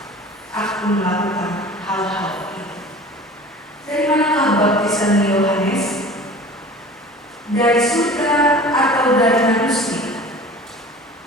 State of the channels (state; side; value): normal; both; correlation 0.41